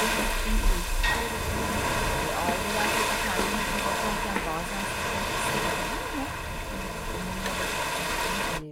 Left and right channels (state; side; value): identical; both; correlation 1.00